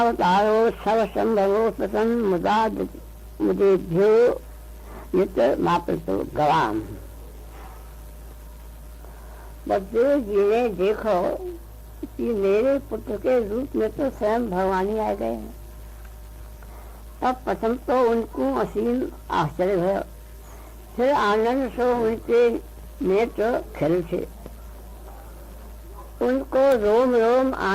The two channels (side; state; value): both; identical; correlation 1.00